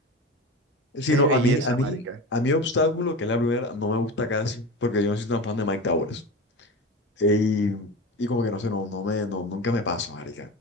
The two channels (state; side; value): normal; both; correlation 0.28